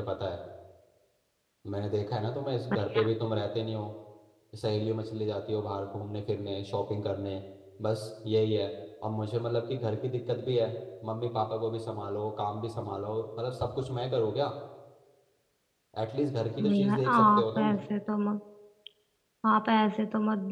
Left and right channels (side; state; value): both; identical; correlation 1.00